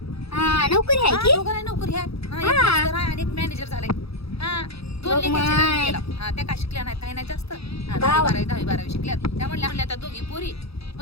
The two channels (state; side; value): late; right; 0.77 ms